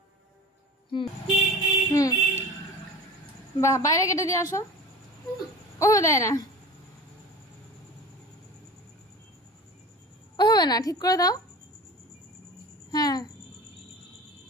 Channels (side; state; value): both; normal; correlation 0.36